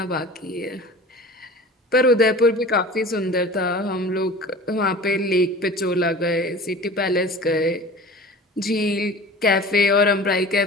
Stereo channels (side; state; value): both; normal; correlation 0.40